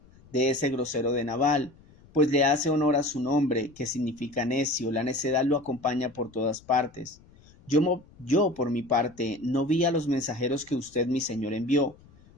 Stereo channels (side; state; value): left; noise; rumble, 26 dB below the sound